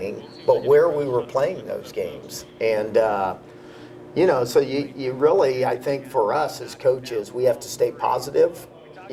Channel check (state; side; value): identical; both; correlation 1.00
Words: but where we were playing those games. And, you know, so you really, I think for us as coaches, we have to stay positive.